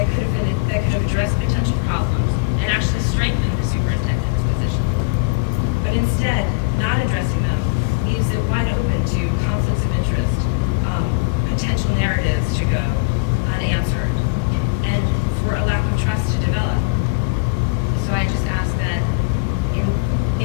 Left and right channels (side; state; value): right; quieter; 27.3 dB